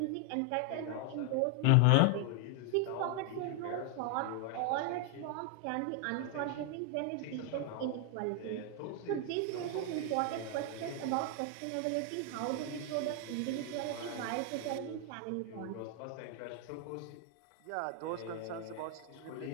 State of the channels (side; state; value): both; different; correlation 0.00